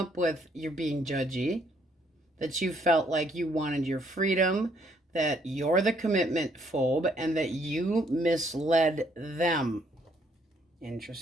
with, you're being judgy. That you felt like you wanted your freedom. That you're the commitment phobe and that you misled them.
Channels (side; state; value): both; normal; correlation 0.68